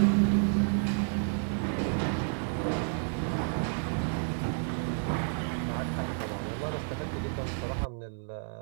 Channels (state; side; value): silent; left; 57 dB below the other